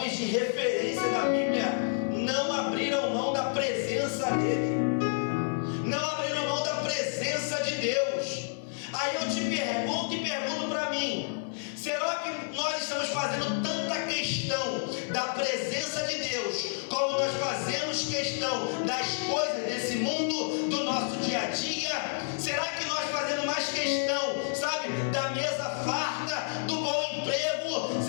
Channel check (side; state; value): right; silent; digital silence